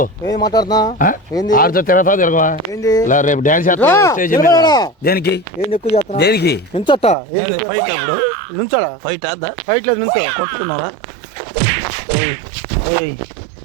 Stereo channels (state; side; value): drops out; left; at 7.2 s